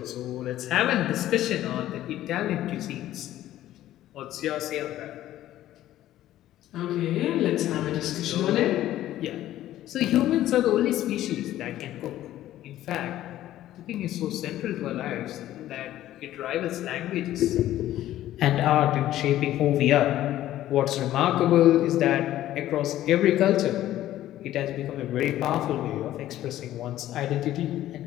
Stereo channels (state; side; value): quieter; right; 13.6 dB